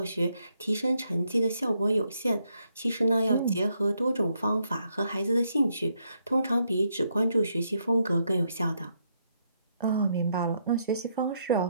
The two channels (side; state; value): both; inverted; correlation -0.76